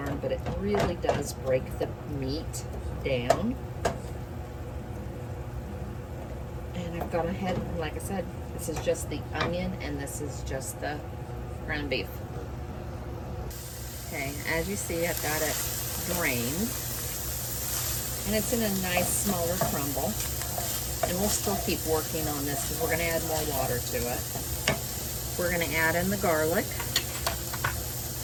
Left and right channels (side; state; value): both; identical; correlation 1.00